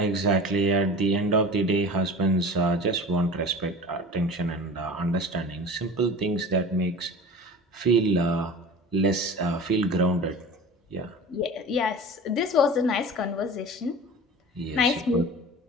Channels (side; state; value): both; normal; correlation 0.37